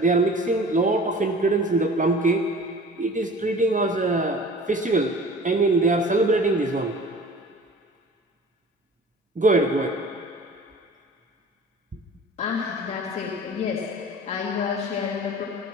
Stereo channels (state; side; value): normal; both; correlation 0.43